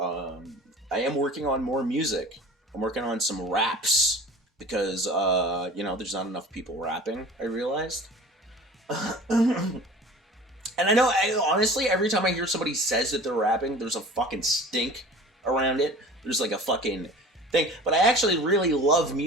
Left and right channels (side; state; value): both; normal; correlation 0.42